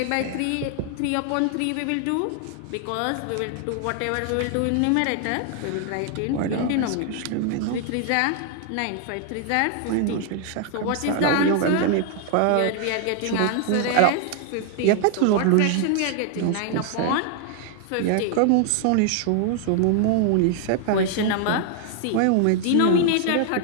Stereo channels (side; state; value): both; different; correlation 0.00